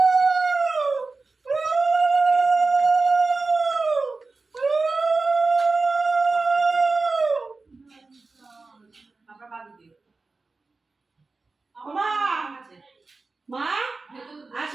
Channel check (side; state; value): left; quieter; 3.8 dB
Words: আপনার বাদ দিয়ে। মা মা